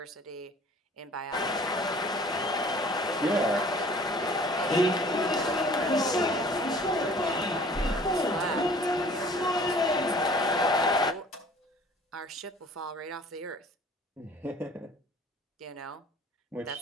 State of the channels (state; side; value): normal; both; correlation 0.51